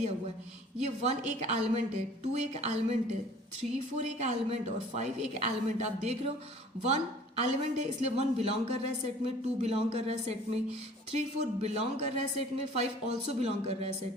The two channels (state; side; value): normal; both; correlation 0.50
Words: हुआ है, ये 1 एक एलिमेंट है, 2 एक एलिमेंट है, 3, 4 एक एलिमेंट और 5 एक एलिमेंट. आप देख रहे हो 1 एलिमेंट है इसलिए 1 बिलोंग कर रहा है सेट में, 2 बिलोंग कर रहा है सेट में, 3, 4 बिलोंग कर रहा है सेट में, 5 ऑल्सो बिलोंग कर रहा है